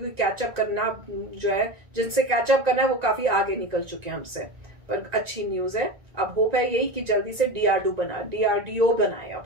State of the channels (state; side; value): late; left; 1.9 ms